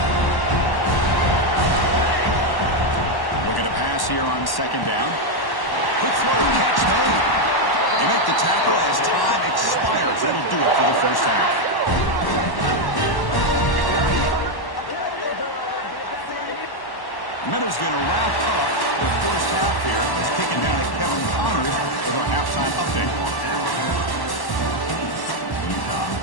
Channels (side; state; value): right; late; 1.1 ms